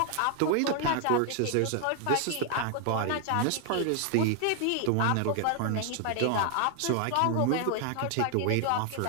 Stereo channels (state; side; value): different; both; correlation 0.00